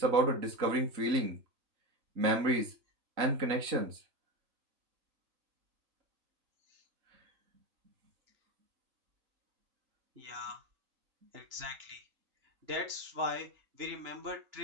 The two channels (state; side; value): late; left; 3.8 ms